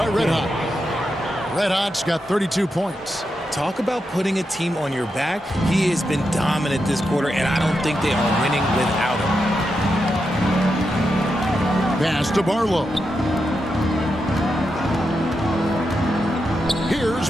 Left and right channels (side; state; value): both; normal; correlation 0.86